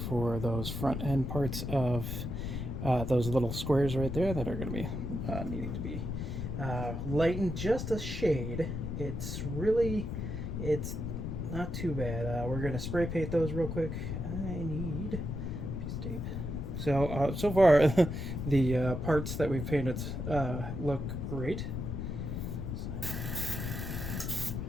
those front end parts of those little squares right there that are going to be needing to be lightened just a shade. It's not too bad. We're going to spray paint those real quick. I need a piece of tape. So so far the parts that we've painted look great.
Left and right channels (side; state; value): left; noise; rumble, 4 dB below the sound